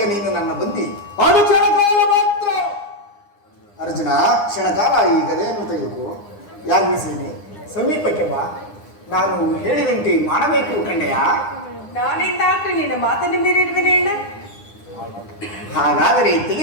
ನೀನು ನನ್ನ ಬಂದಿ. ಅದು ಕ್ಷಣಕಾಲ ಮಾತ್ರ. ಅರ್ಜುನ, ಕ್ಷಣಕಾಲ ಈ ಗದೆಯನ್ನು ತೆಗೆದುಕೋ. ಯಾಜ್ಞಸೇನೆ, ಸಮೀಪಕ್ಕೆ ಬಾ. ನಾನು ಹೇಳಿದಂತೆ ಮಾಡಬೇಕು ಕಂಡೆಯ. ನಾನಿಂದ ಆಗ್ಲಿ ನಿನ್ನ ಮಾತನ್ನು ಮೀರಿರುವೆನೆ ಅಣ್ಣ. ಹಾಗಾದರೆ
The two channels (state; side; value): late; right; 9.8 ms